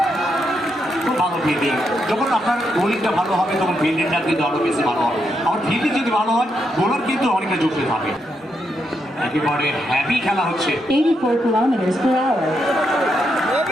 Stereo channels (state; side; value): normal; both; correlation 0.81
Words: খুব ভালো ফিল্ডিং। যখন আপনার বোলিংটা ভালো হবে তখন ফিল্ডিংটা কিন্তু আরো বেশি ভালো হবে। আর ফিল্ডিং যদি ভালো হয় বোলার কিন্তু অনেকটা যুক্তি থাকে। একেবারে হ্যাভি খেলা হচ্ছে। 84 kilometers per hour.